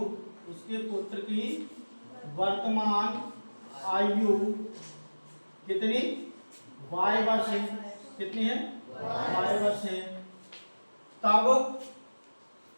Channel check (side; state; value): both; inverted; correlation -1.00